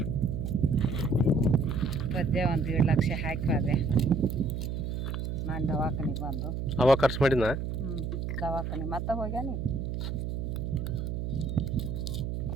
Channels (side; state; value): right; noise; hum, 3 dB below the sound